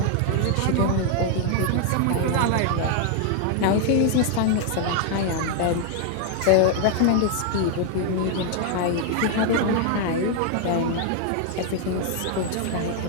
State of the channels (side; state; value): both; different; correlation 0.00